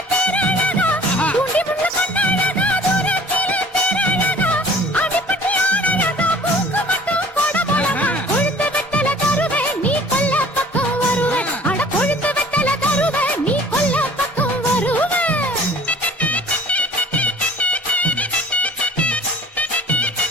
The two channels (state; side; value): normal; both; correlation 0.49